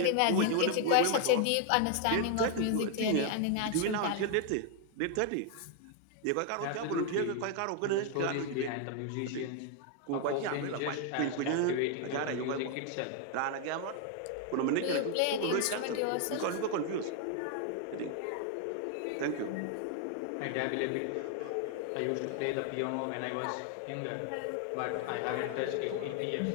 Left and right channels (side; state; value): both; different; correlation 0.00